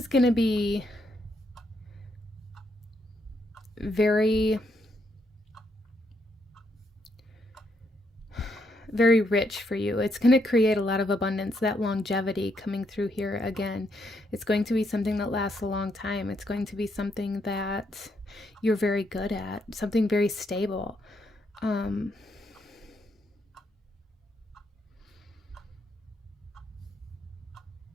going to be very, very rich for you. It's going to create a lot of abundance, that longevity coming through here again. It's going to be something that lasts a long time. It's going to be something that you're very good at, something very stable.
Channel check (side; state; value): both; normal; correlation 0.76